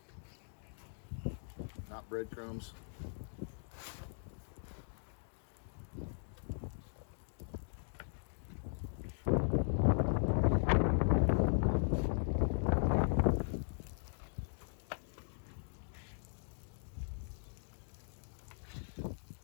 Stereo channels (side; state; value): right; silent; digital silence